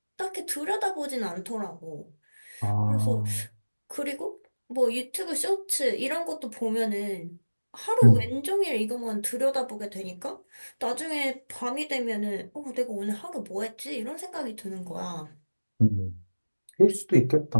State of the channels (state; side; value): inverted; both; correlation -1.00